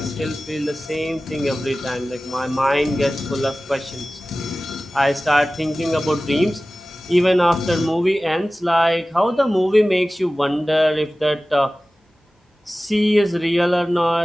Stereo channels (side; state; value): both; normal; correlation 0.97